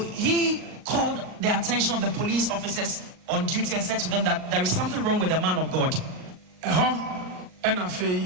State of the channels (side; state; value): left; late; 38 ms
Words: called the attention of the police officers on duty and said to them that there is something wrong with the man of God. And I